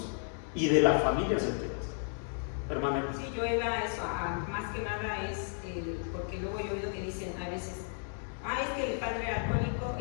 y de las familias enteras. Hermana. Sí, yo iba a eso, más que nada es, porque luego yo he oído que dicen a veces, es que el padre era alcohólico,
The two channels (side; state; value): right; silent; 56 dB below the other